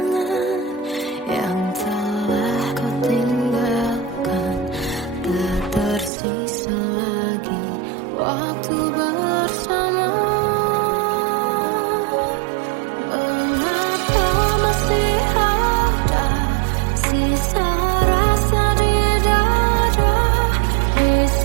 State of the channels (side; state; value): left; drops out; at 6.1 s